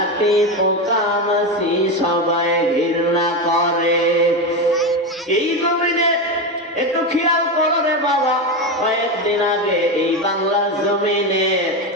পোকা মাছি সবাই ঘৃণা করে। এই জমিনে একটু খেয়াল করো রে বাবা, কয়েকদিন আগে এই বাংলার জমিনে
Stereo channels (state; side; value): normal; both; correlation 0.15